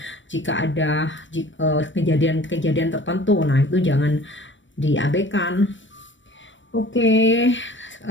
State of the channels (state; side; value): late; right; 0.55 ms